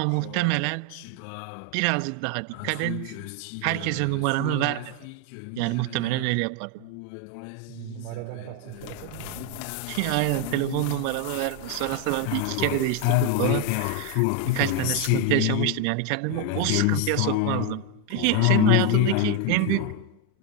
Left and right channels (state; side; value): different; both; correlation 0.02